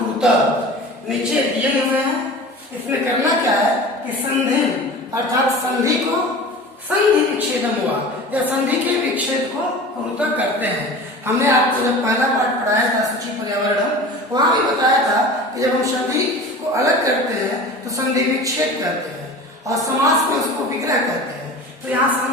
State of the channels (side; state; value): both; normal; correlation 0.37